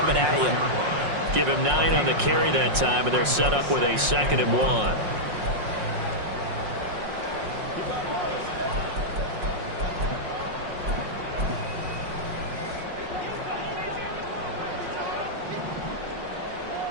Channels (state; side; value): late; left; 5.5 ms